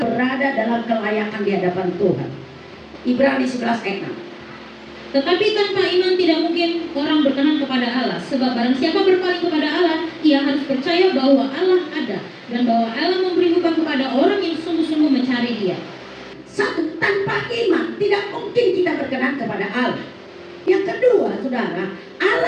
berada dalam kelayakan di hadapan Tuhan. Ibrani 11 ayat 6. Tetapi tanpa iman tidak mungkin orang berkenan kepada Allah. Sebab barang siapa berpaling kepada Allah, ia harus percaya bahwa Allah ada, dan bahwa Allah memberi upah kepada orang yang sungguh-sungguh mencari Dia. Satu, tanpa iman tidak mungkin kita berkenan kepada Allah. Yang kedua, saudara,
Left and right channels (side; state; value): both; identical; correlation 1.00